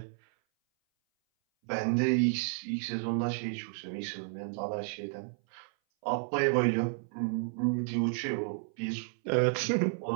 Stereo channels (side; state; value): left; silent; 57 dB below the other